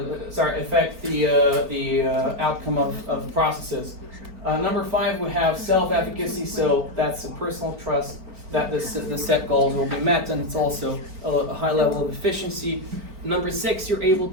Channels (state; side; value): late; left; 4.4 ms